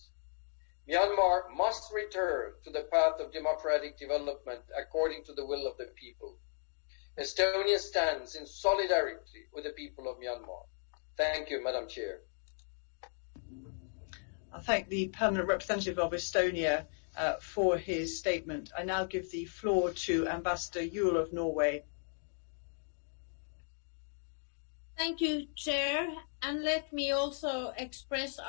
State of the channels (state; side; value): silent; right; 54 dB below the other